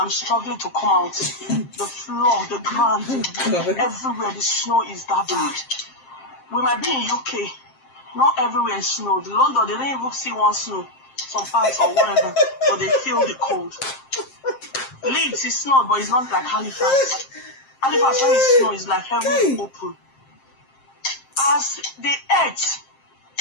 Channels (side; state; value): right; late; 7.6 ms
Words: struggling to come out. The floor, the ground, everywhere the snow is that bad. We might be in UK. Not everywhere is snow. The London, they don't even see one snow. Some parts or whatever. But they feel the cold. Leeds is snow, but it's not like Halifax. Halifax, when it's snow, is like heaven open. As the earth